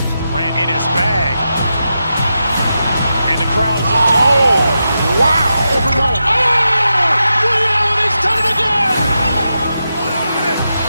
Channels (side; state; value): both; inverted; correlation -0.88